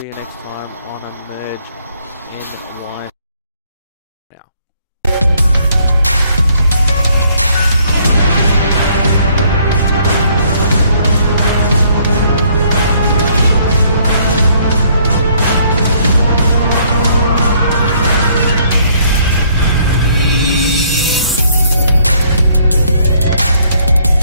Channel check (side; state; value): both; inverted; correlation -0.65